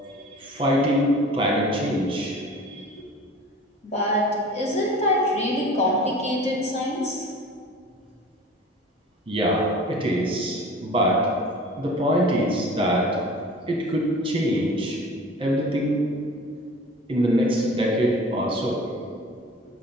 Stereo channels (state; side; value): normal; both; correlation 0.41